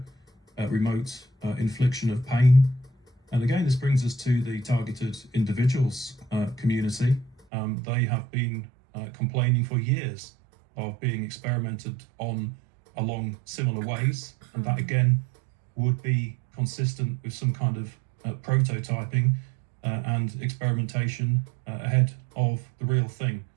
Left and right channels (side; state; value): left; drops out; at 7.4 s